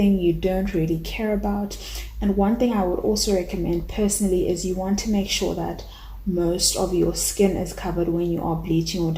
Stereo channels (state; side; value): identical; both; correlation 1.00